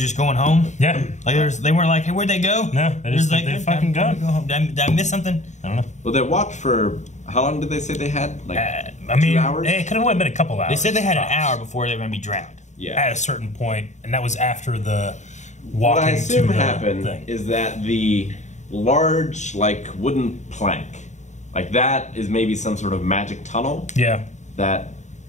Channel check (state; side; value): late; right; 0.34 ms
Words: going home. Yeah. Like they weren't like, hey, where'd they go? No, they They're just like, they "Hey, fucking time go. to home. Did I miss something? I don't know. Well, they walked for... How long did they say they had? Like, I mean, 2 hours? it could have only been a couple hours. They said they had an tops. hour before they were going to be drowned. yeah. At a certain point, and that was after the What walking I assume to the happened thing. is that the large, like, wooden plank, like that is maybe some sort of magic tunnel Yeah, that